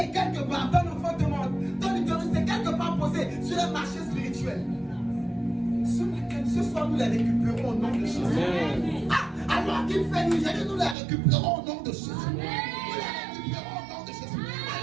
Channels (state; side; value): drops out; left; at 11.0 s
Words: quelque part, ton enfant demande, ton utérus est quelque part posé sur un marché spirituel. Ce soir, nous les récupérons au nom de Jésus. Alors qu'il fait nous aider, nous les récupérons au nom de Jésus. Nous les récupérons au nom de Jésus.